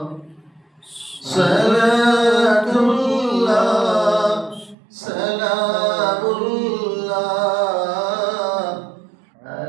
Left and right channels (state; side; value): drops out; left; at 4.8 s